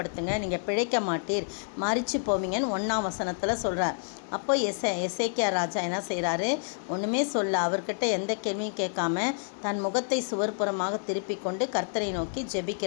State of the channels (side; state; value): right; silent; 59 dB below the other